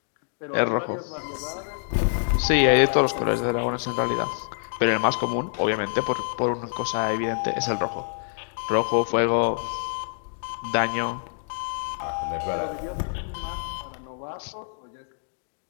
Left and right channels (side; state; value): right; silent; digital silence